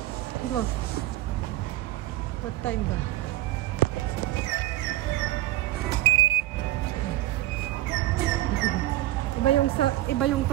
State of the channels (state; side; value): quieter; left; 15.7 dB